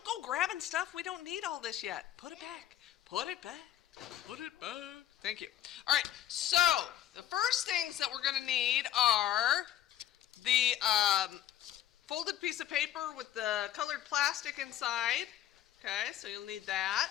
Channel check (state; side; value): quieter; right; 12.1 dB